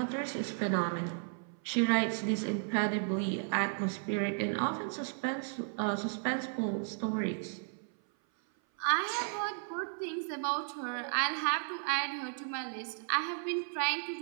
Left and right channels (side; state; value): left; silent; 55 dB below the other